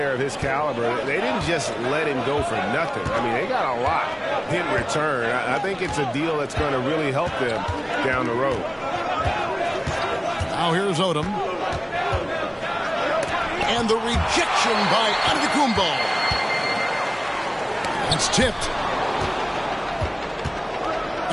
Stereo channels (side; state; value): both; identical; correlation 1.00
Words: of his caliber, they didn't just let him go for nothing. I mean, they got a lot in return. I think it's a deal that's going to really help them down the road. Now here's Odom. And the rejection by Antetokounmpo. That's tipped.